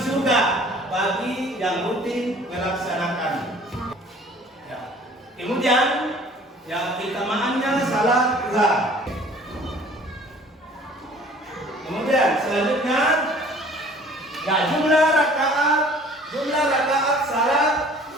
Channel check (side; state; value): both; normal; correlation 0.52